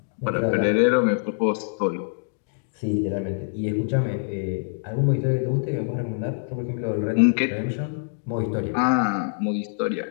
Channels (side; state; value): right; silent; digital silence